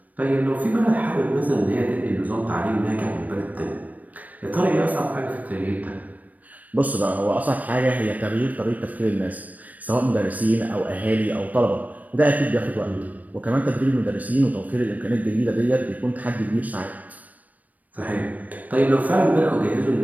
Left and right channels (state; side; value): late; left; 0.076 ms